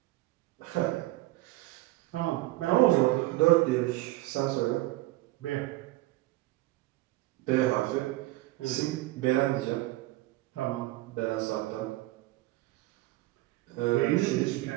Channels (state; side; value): quieter; left; 18.7 dB